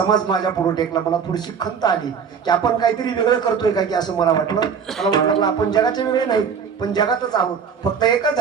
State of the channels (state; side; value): quieter; left; 6.7 dB